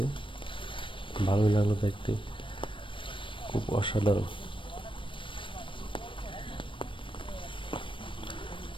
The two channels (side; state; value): right; late; 0.25 ms